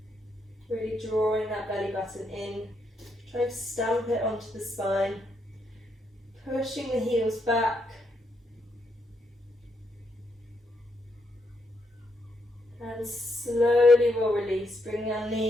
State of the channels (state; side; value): normal; both; correlation 0.78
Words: Really drawing that belly button in, trying to stamp it onto the spine, pushing the heels back. And slowly we'll release, bringing our